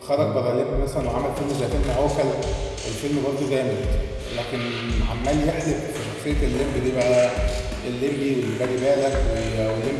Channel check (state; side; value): identical; both; correlation 1.00